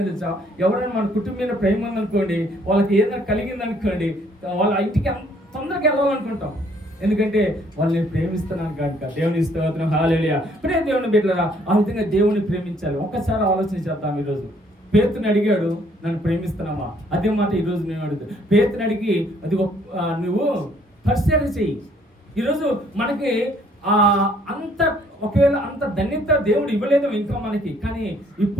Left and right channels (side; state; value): both; normal; correlation 0.64